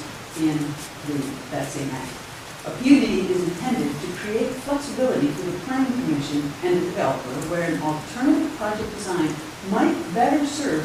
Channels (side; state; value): both; identical; correlation 1.00